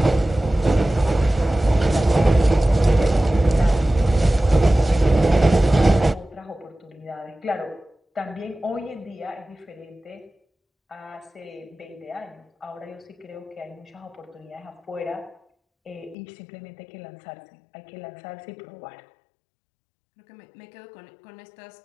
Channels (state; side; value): drops out; right; at 16.2 s